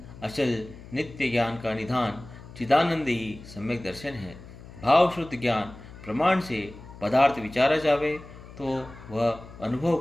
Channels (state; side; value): noise; left; hum, 17 dB below the sound